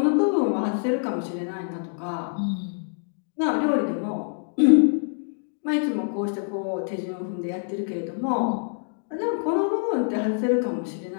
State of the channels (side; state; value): right; silent; digital silence